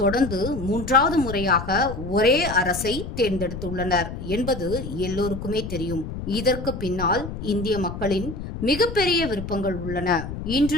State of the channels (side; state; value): left; noise; rumble, 8 dB below the sound